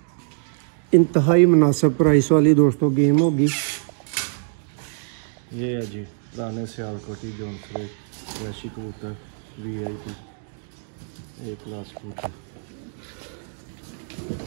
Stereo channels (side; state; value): left; silent; 60 dB below the other